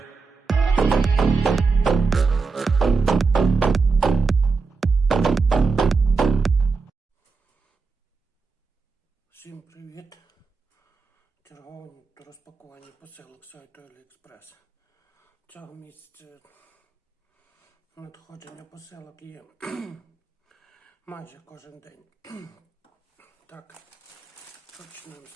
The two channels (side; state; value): left; quieter; 4.5 dB